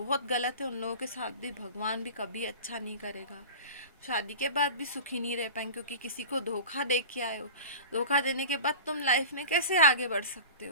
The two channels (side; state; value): both; inverted; correlation -0.34